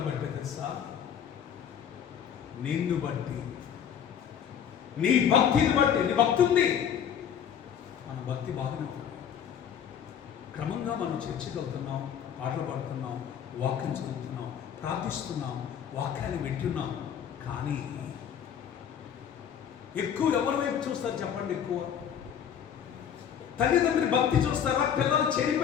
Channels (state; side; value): quieter; right; 8.6 dB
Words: బట్టి తెలుసా? నిన్ను బట్టి, నీ భక్తిని బట్టి. నీ భక్తి ఉంది, మన భక్తి బాగానే ఉంటుంది. క్రమంగా మనం చర్చకి వెళ్తున్నాం, పాటలు పాడుతున్నాం, వాక్యం చదువుతున్నాం, ప్రార్థిస్తున్నాం, వాక్యాన్ని వింటున్నాం. కానీ ఎక్కువ ఎవరి వైపు చూస్తారు చెప్పండి? ఎక్కువ తల్లిదండ్రులు భక్తి చూస్తారా, పిల్లలు